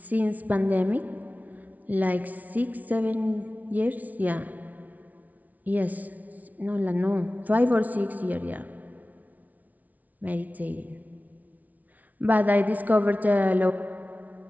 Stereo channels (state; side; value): late; left; 0.074 ms